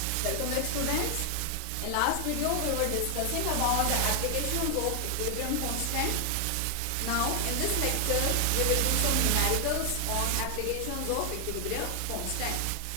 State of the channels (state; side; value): different; both; correlation 0.00